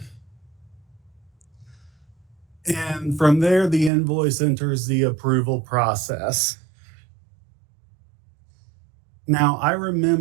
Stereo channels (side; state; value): left; drops out; at 3.9 s